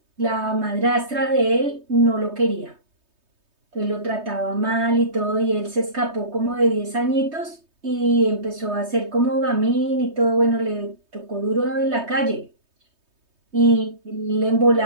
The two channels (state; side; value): late; left; 3.2 ms